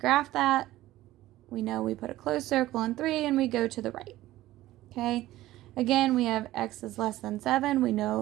that. We know we put a closed circle on 3 and we go to the right. Okay, again, we have x is less than 7. We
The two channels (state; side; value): quieter; left; 15.8 dB